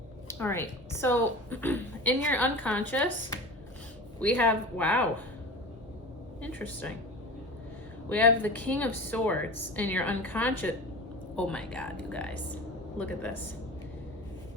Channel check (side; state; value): both; normal; correlation 0.33